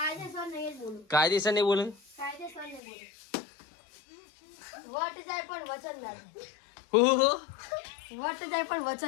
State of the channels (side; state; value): right; drops out; at 2.8 s